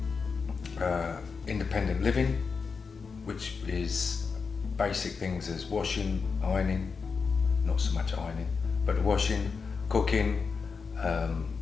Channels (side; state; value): right; quieter; 5.2 dB